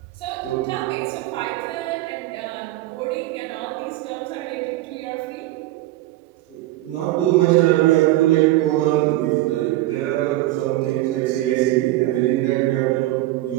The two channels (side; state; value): left; quieter; 16.7 dB